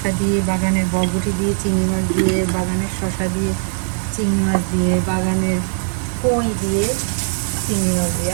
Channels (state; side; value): silent; left; digital silence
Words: দিয়ে, বাগানের বরবটি দিয়ে, চিংড়ি মাছ দিয়ে, বাগানের শসা দিয়ে, চিংড়ি মাছ দিয়ে, বাগানের কই দিয়ে, চিংড়ি মাছ দিয়ে।